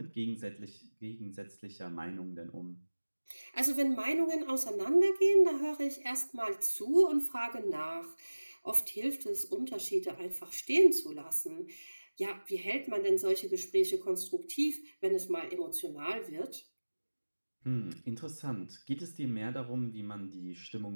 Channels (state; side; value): inverted; both; correlation -1.00